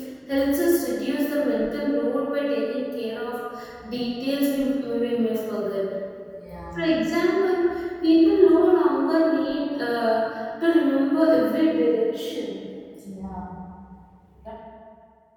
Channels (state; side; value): identical; both; correlation 1.00